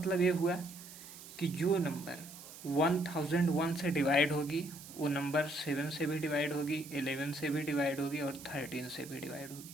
ये हुआ कि जो नंबर 1001 से डिवाइड होगी वो नंबर 7 से भी डिवाइड होगी, 11 से भी डिवाइड होगी और 13 से भी डिवाइड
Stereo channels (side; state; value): right; noise; hiss, 15 dB below the sound